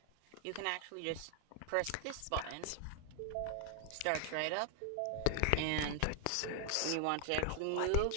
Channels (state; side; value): different; both; correlation 0.00